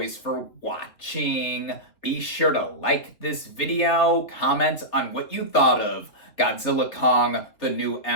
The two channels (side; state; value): right; late; 3.0 ms